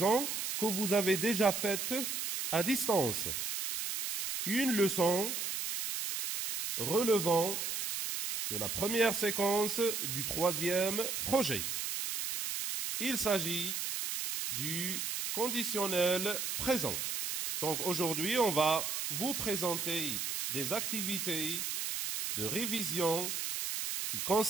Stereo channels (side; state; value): right; noise; hiss, 2 dB below the sound